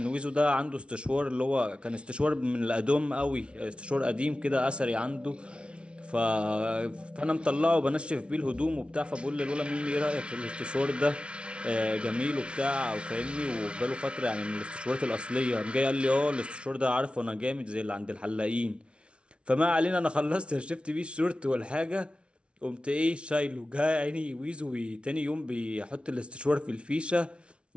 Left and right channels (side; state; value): left; late; 0.059 ms